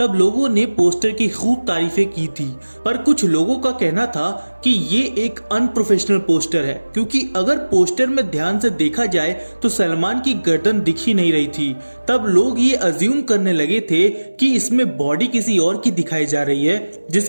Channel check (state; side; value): inverted; both; correlation -1.00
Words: लोगों ने पोस्टर की खूब तारीफें की थी, पर कुछ लोगों का कहना था कि ये एक अनप्रोफेशनल पोस्टर है, क्योंकि अगर पोस्टर में ध्यान से देखा जाए तो सलमान की गर्दन दिख ही नहीं रही थी। तब लोग ये अज्यूम करने लगे थे कि इसमें बॉडी किसी और की दिखाई जा रही है